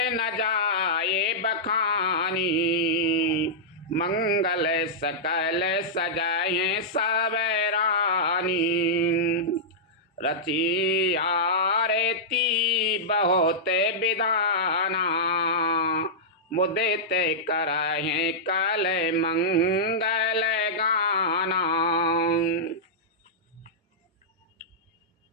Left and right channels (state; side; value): normal; both; correlation -0.12